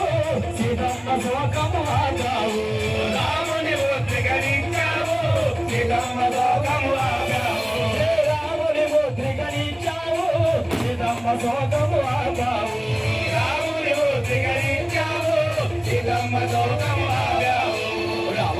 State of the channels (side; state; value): left; noise; hum, 25 dB below the sound